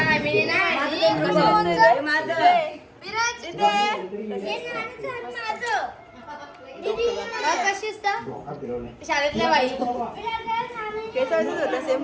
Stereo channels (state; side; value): identical; both; correlation 1.00